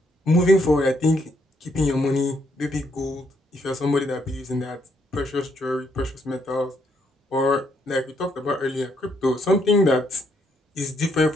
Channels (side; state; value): both; normal; correlation 0.73